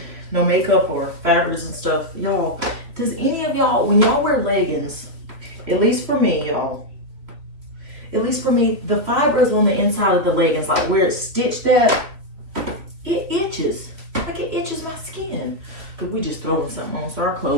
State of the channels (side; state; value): left; late; 3.4 ms